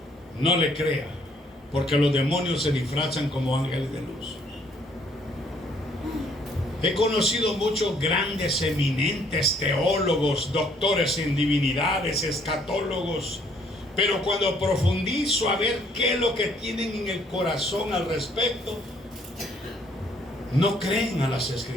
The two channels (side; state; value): both; normal; correlation 0.64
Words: no le crea, porque los demonios se disfrazan como ángeles de luz. He conocido muchos grandes, eminentes teólogos, doctores en divinidades, escatólogos, pero cuando profundizo a ver qué es lo que tienen en el corazón al respecto, no creen a las